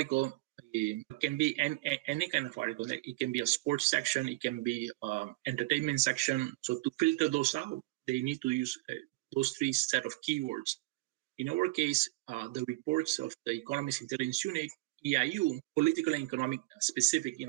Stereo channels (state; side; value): quieter; left; 21.2 dB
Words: can be any kind of article. Like it can be a sports section, it can be entertainment section. So to filter those out, they need to use those 3 set of keywords. In our case, the reports of the Economist Intelligent Unit, EIU, political and economic specific,